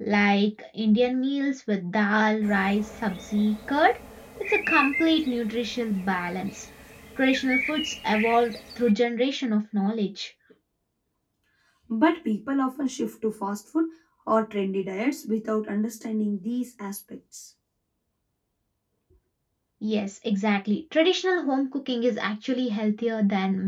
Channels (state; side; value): identical; both; correlation 1.00